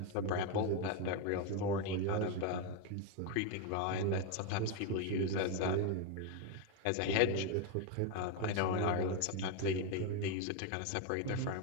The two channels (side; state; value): both; different; correlation 0.01